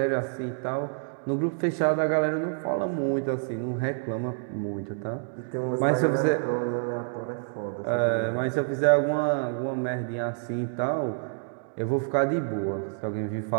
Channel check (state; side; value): silent; left; digital silence